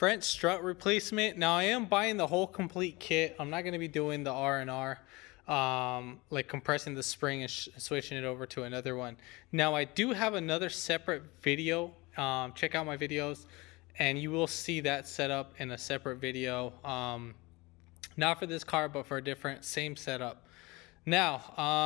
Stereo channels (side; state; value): right; quieter; 23.6 dB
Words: strut replacement. Now I am buying the whole complete kit. I'm not going to be doing the R&R, like compressing the spring and switching it over to another one. Now I do have another separate video. Check out my videos and you will see that setup in a separate video. Not for this car, but for a different, same setup.